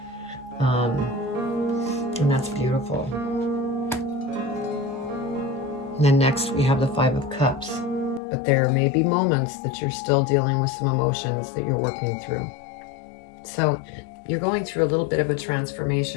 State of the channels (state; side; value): drops out; right; at 8.2 s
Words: And that's beautiful. And then next we have the Five of Cups. But there may be moments that you're still dealing with some emotions that you're working through. So you're going through a little bit of a